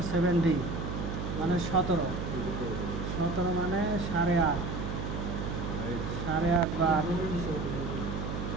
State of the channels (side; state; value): right; noise; hum, 4 dB below the sound